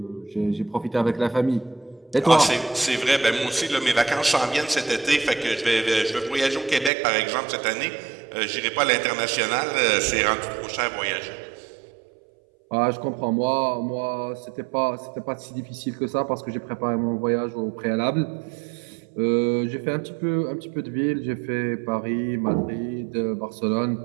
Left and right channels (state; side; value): drops out; left; at 6.9 s